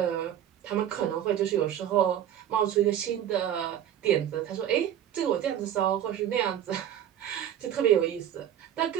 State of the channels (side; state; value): left; quieter; 10.5 dB